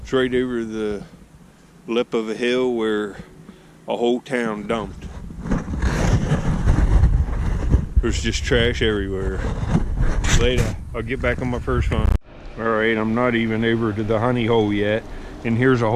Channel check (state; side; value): identical; both; correlation 1.00